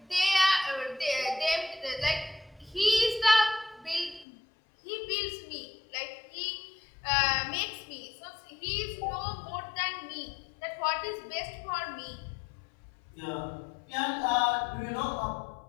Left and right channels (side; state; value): right; drops out; at 4.2 s